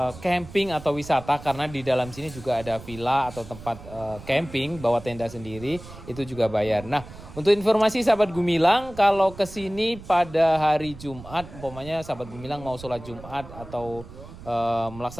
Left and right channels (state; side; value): noise; right; rumble, 16 dB below the sound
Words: camping atau wisata, karena di dalam sini juga ada villa atau tempat camping bawa tenda sendiri, itu juga bayar. Nah, untuk informasi sahabat Gumilang, kalau ke sini pada hari Jumat, umpamanya sahabat Gumilang mau sholat Jumat atau